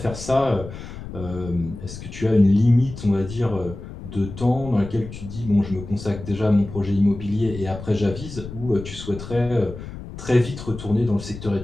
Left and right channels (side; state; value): left; noise; rumble, 12 dB below the sound